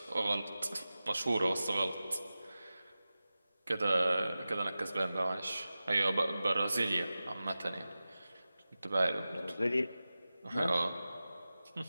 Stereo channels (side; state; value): both; inverted; correlation -0.95